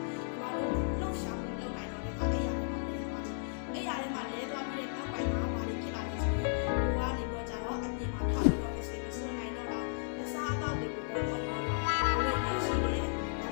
ီမှာတော့လှုပ်ရှားမှုလုပ်နိုင်တော့တဲ့အခါအဲ့ရထဲမှာလဲသွားတယ်အဲ့ရထဲမှာလဲသွားပြီးတဲ့နောက်ပိုင်းမှာဘာတွေဖြစ်လာလဲဆိုရင်ကိုကနေပြီးတော့ကြတော့အပြင်မှာထားပြီးတော့မစိမ့်မစွနိုင်တော့တာအစားအသောက်တွေကိုပေါ်တော့တော့ဘယ်လိုရှိတယ်ဒါ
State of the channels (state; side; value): silent; right; digital silence